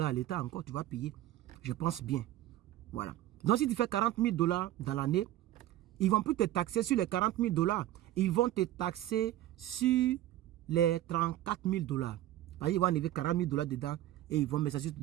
l'État encore, tu vas payer. Je pense bien. Voilà. Donc, si tu fais 40 000 $ dans l'année, ils ne vont plus te taxer sur les 40 000 $. Ils vont te taxer sur les 34 000 $. Ils vont enlever 40 000 $ dedans et ils vont mettre ça sur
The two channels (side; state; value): left; quieter; 13.9 dB